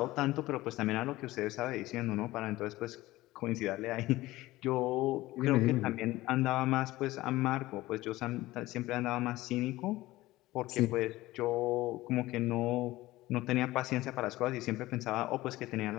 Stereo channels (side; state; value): right; quieter; 17.8 dB